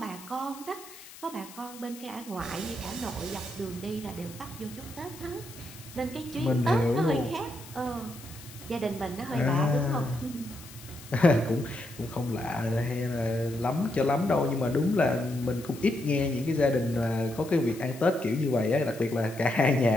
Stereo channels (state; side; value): noise; left; hiss, 18 dB below the sound